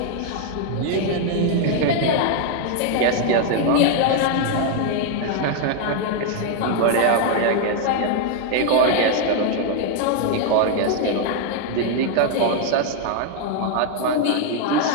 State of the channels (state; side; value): different; both; correlation 0.00